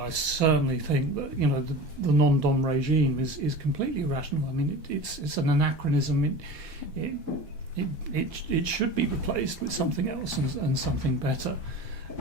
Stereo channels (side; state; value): left; late; 1.2 ms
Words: I certainly think that the non-dom regime is completely irrational. I mean, it's an anachronism. It should be replaced with something else and something better.